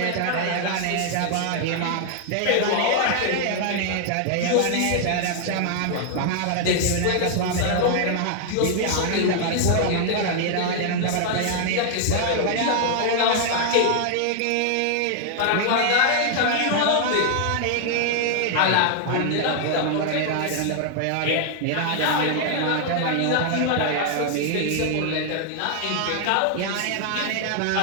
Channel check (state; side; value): different; both; correlation 0.00